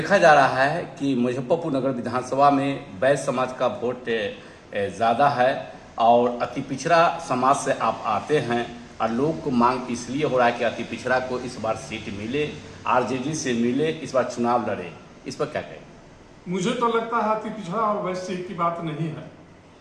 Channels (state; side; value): identical; both; correlation 1.00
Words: जा रहा है कि मुजफ्फरपुर नगर विधानसभा में वैश्य समाज का वोट ज़्यादा है और अति पिछड़ा समाज से आप आते हैं और लोग को मांग इसलिए हो रहा है कि अति पिछड़ा को इस बार सीट मिले, आरजेडी से मिले, इस बार चुनाव लड़े। इस पर क्या कहें? मुझे तो लगता है अति पिछड़ा और वैश्य की बात नहीं है।